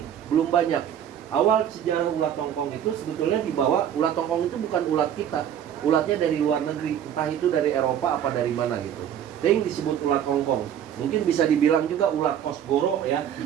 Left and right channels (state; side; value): quieter; left; 9.7 dB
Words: belum banyak. Awal sejarah ulat hongkong itu sebetulnya dibawa, ulat hongkong itu bukan ulat kita. Ulatnya dari luar negeri, entah itu dari Eropa apa dari mana gitu. Yang disebut ulat hongkong. Mungkin bisa dibilang juga ulat kosgoro ya.